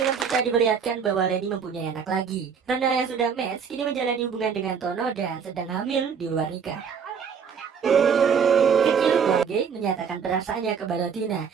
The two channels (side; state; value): left; quieter; 6.7 dB